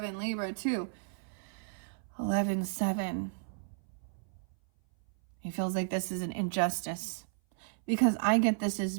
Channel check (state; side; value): silent; left; 55 dB below the other